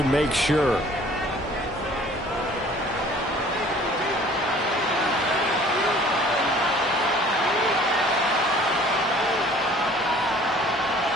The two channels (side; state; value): both; normal; correlation 0.52